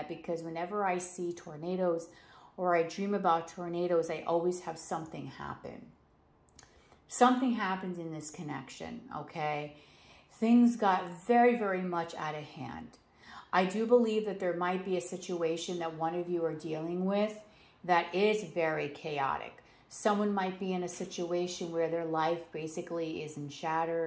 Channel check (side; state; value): both; identical; correlation 1.00